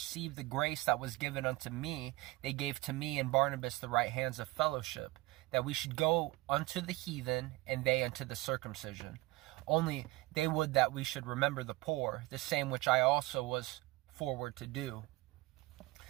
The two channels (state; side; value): quieter; left; 20.6 dB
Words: the grace that was given unto me, they gave to me and Barnabas the right hands of fellowship, that we should go unto the heathen, and they unto the circumcision. Only they would that we should remember the poor, the same which I also was forward to do.